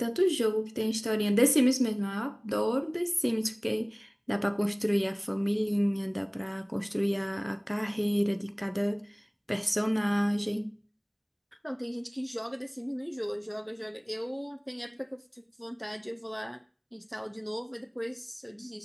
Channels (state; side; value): identical; both; correlation 1.00